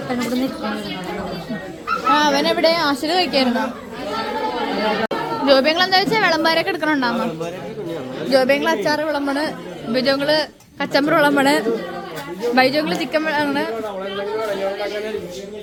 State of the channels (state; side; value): identical; both; correlation 1.00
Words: ആ അവനെവിടെ ആശുപത്രി കഴിക്കായിരുന്നോ? ജോബിയങ്ങൾ എന്താ വെച്ചാൽ വിളമ്പാരൊക്കെ എടുക്കണുണ്ടാവുമ്പോ ജോബിയങ്ങൾ അച്ചാറ് വിളമ്പണ്, ബിജോങ്ങള് കച്ചമ്പറ് വിളമ്പണ്, ബൈജോങ്ങള് ചിക്കൻ വിളമ്പണ്.